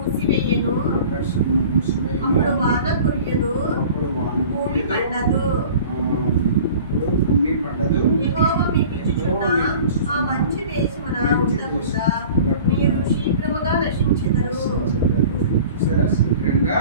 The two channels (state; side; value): inverted; both; correlation -0.43